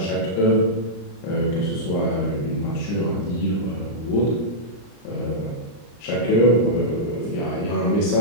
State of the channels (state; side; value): late; right; 34 ms